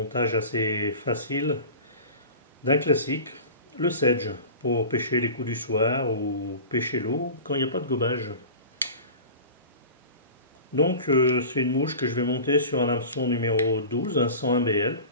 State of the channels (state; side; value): inverted; both; correlation -0.36